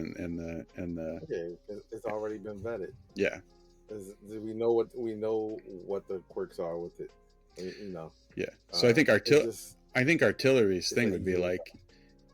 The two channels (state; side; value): identical; both; correlation 1.00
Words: the yeah, it's already been vetted. Yeah. We know what the quirks are with it. Yeah. So I think Artillery's thing would be like,